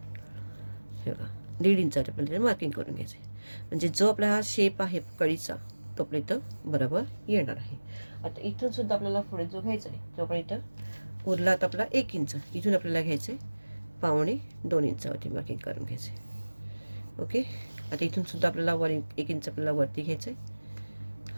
हे बघा 1.5 इंचावरती आपल्याला मार्किंग करून घ्यायचं आहे, म्हणजे जो आपला हा शेप आहे कळीचा तो आपल्या इथं बरोबर येणार आहे. आता इथून सुद्धा आपल्याला पुढे जो घ्यायचा आहे तो आपण इथं उरला आता आपला 1 इंच, इथून आपल्याला घ्यायचं आहे 2.25 इंचावरती मार्किंग करून घ्यायचं आहे. ओके, आता इथून सुद्धा आपल्याला 1 इंच आपल्याला वरती घ्यायचं आहे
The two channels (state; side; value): inverted; both; correlation -1.00